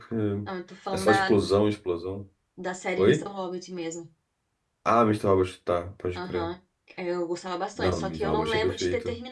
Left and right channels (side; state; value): both; identical; correlation 1.00